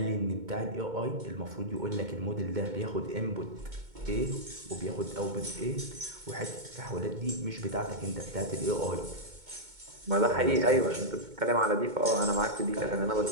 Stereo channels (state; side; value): late; left; 2.2 ms